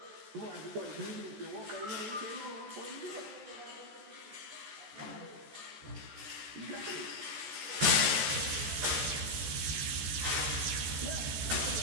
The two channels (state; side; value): late; left; 14 ms